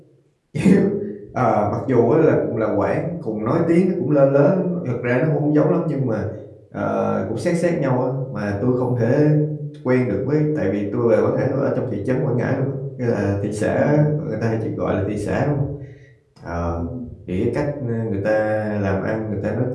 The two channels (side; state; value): both; identical; correlation 1.00